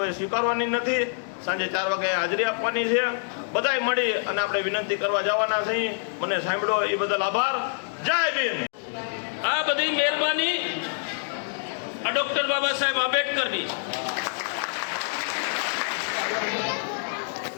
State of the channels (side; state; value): right; silent; 61 dB below the other